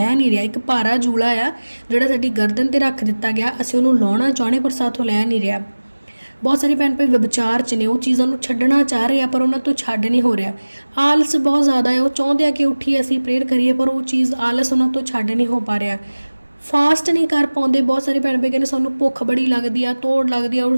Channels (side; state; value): both; inverted; correlation -1.00